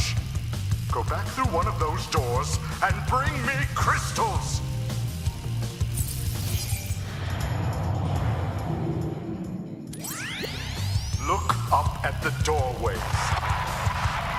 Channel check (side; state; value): both; identical; correlation 1.00